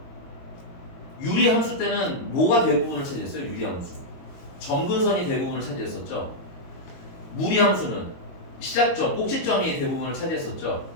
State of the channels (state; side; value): late; right; 22 ms